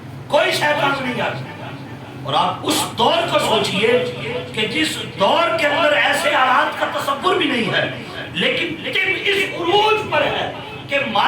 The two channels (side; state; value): both; identical; correlation 1.00